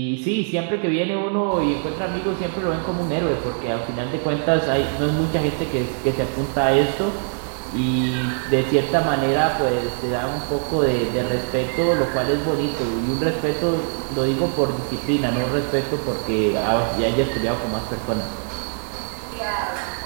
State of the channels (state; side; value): silent; left; digital silence